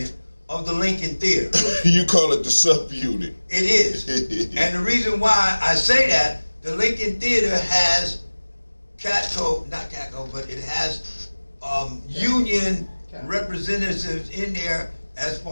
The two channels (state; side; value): inverted; both; correlation -1.00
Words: of the Lincoln Theater. You call it the subunit. It is. And the reason why I say that, the Lincoln Theater has but it has union representatives in there as